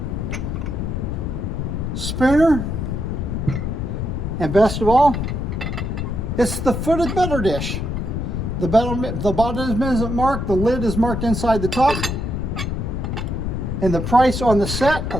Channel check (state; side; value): noise; left; rumble, 2 dB below the sound